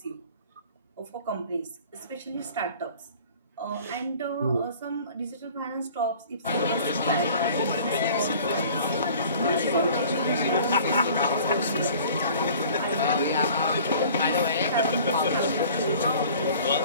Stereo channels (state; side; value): inverted; both; correlation -0.47